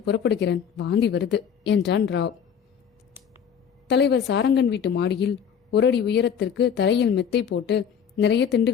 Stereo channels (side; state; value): right; quieter; 7.7 dB